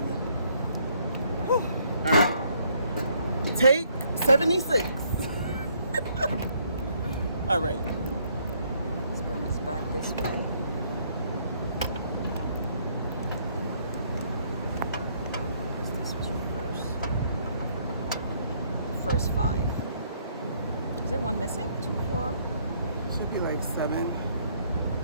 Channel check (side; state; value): both; inverted; correlation -0.67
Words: All right. Take 76. All right. Let's bring this back this way. This was your first 5. Is there one missing? 2, 4. Should be like 7.